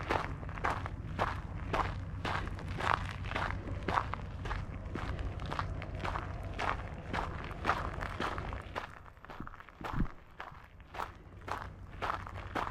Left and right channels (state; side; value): identical; both; correlation 1.00